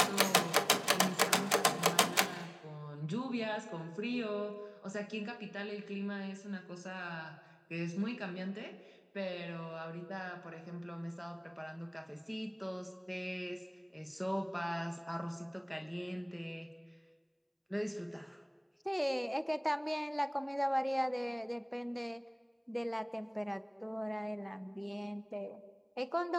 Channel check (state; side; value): identical; both; correlation 1.00